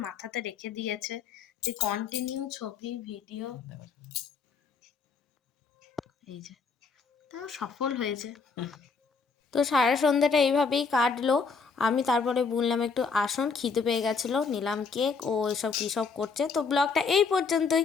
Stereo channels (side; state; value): right; quieter; 5.0 dB